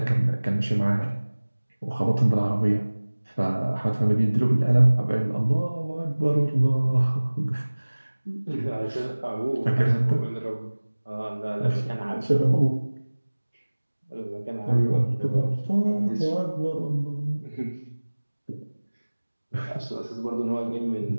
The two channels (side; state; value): both; inverted; correlation -1.00